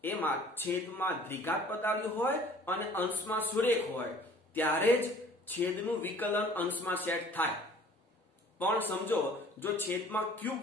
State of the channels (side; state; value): both; normal; correlation 0.51